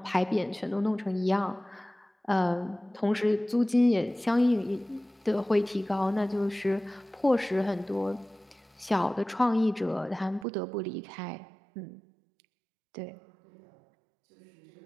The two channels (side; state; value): left; drops out; at 10.5 s